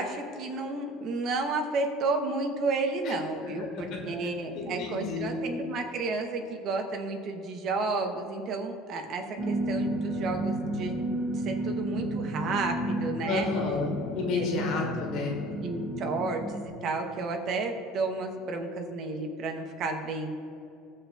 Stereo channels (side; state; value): both; normal; correlation 0.47